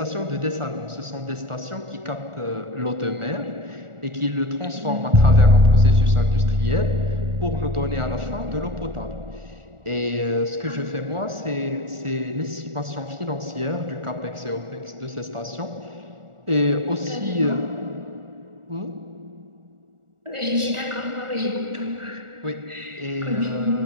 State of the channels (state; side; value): late; left; 1.4 ms